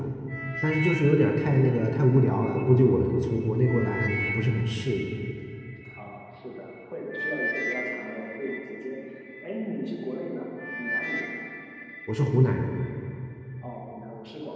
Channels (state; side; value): identical; both; correlation 1.00